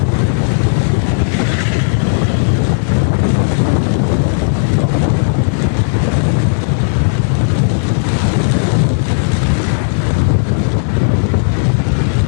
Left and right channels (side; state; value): right; silent; digital silence